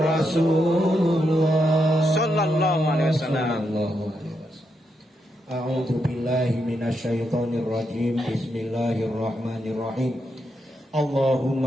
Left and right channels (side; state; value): both; normal; correlation 0.82